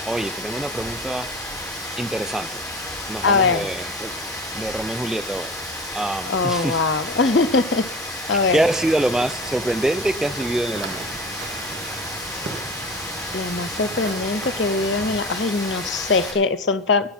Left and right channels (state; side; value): normal; both; correlation 0.32